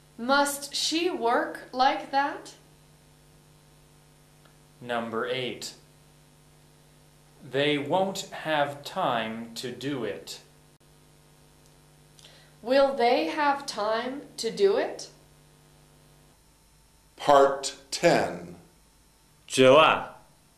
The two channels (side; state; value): both; identical; correlation 1.00